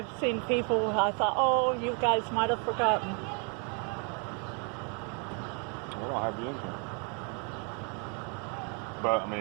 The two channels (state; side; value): quieter; left; 37.3 dB